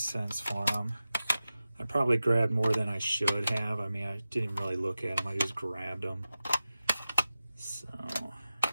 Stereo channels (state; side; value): inverted; both; correlation -0.93